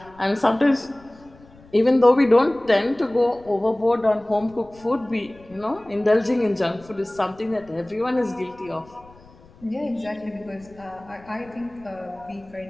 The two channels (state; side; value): noise; left; rumble, 25 dB below the sound